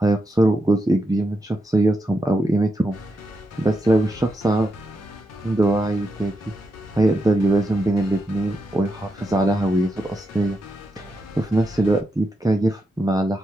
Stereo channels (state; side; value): normal; both; correlation 0.85